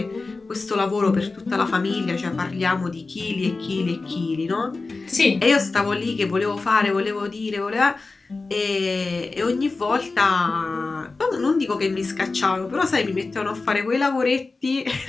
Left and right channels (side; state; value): right; quieter; 3.7 dB